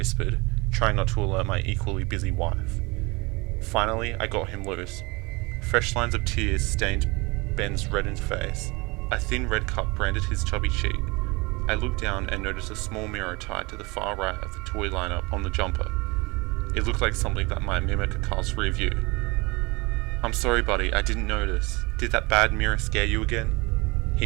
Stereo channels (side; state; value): left; quieter; 25.8 dB